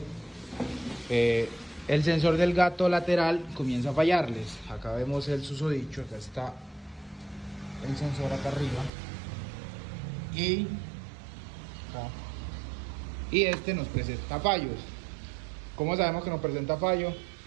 el sensor del gato lateral comienza a fallarles. Acá vemos el susodicho, acá está el sensor acá arriba y este nos presenta fallos. ¿Cómo sabemos que nos presenta fallo?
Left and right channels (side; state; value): left; drops out; at 8.9 s